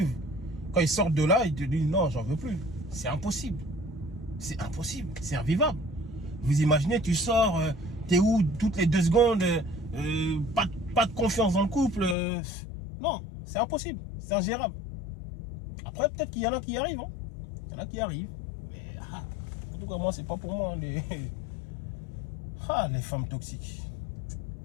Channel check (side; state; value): right; drops out; at 12.2 s